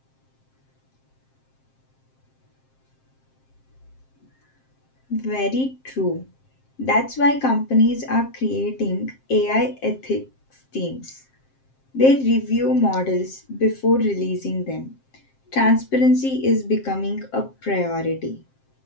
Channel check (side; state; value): right; late; 7.6 ms